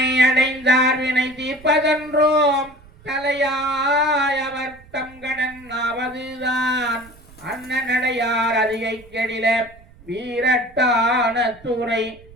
அடைந்தார் வினை தீர்ப்பதன்றோம் தலையாய் அவர் தம் கடன் ஆவதுதான், அண்ணனடையார் அதிகை கெடில வீரட்டான துறை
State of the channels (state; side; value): noise; right; rumble, 24 dB below the sound